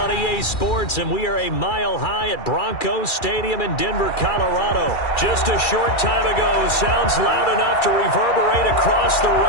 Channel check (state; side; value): late; right; 2.3 ms